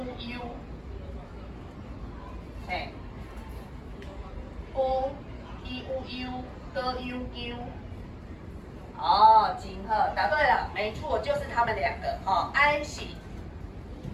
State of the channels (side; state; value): both; identical; correlation 1.00